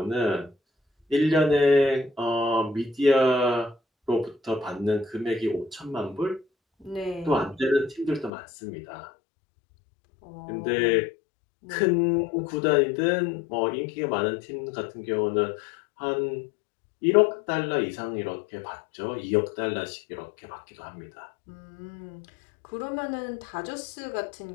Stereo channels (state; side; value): drops out; right; at 8.3 s